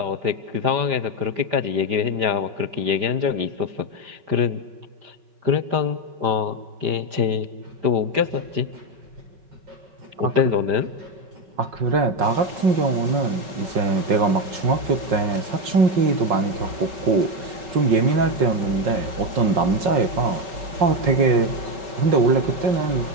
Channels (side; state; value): left; late; 5.5 ms